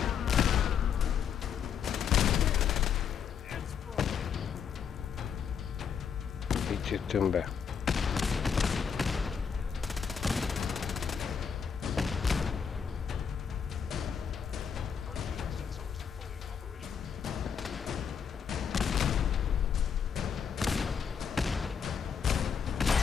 Így jöttünk be.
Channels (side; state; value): right; quieter; 7.1 dB